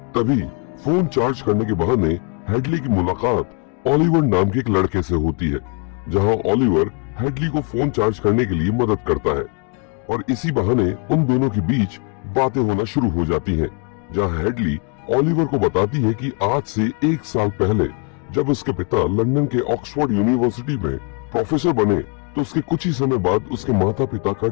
तभी फोन चार्ज करने के बहाने हेडली की मुलाकात ओलिवर नाम के एक लड़के से होती है, जहां ओलिवर हेडली को फोन चार्ज करने के लिए मदद करता है और इसी बहाने उन दोनों के बीच बातें होना शुरू हो जाती हैं, जहां हेडली ओलिवर को बताती है कि आज से 1 साल पहले जब उसके पिता लंदन के ऑक्सफोर्ड यूनिवर्सिटी में प्रोफेसर बने, तो उसके कुछ ही समय बाद उसके माता पिता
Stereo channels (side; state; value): right; quieter; 35.3 dB